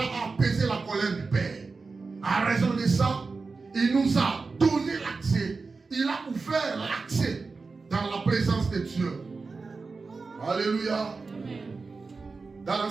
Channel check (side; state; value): left; quieter; 4.2 dB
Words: a apaisé la colère du Père. À raison de ça, il nous a donné l'accès, il a ouvert l'accès dans la présence de Dieu. Alléluia. Dans